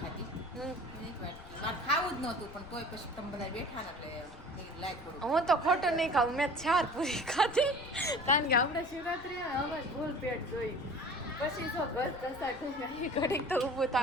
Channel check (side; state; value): left; noise; rumble, 18 dB below the sound